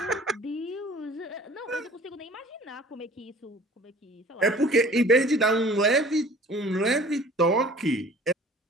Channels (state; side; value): normal; both; correlation 0.48